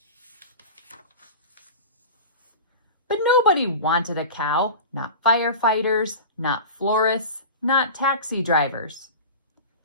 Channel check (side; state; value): both; inverted; correlation -0.32